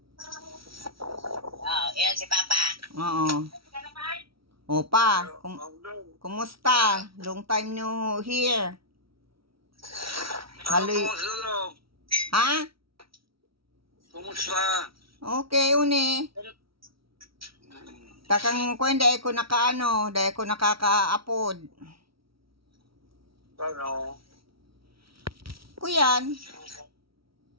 Oh, yan si Papa. Oo. Opa, kumusta? Long time no hear. Halo. Kumusta Log? Ha? Kumusta? Okay, uni. Takang ko hindi ko nakaano, dahil ko nakaka-upload. Ano? Kuyan.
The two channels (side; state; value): left; late; 0.75 ms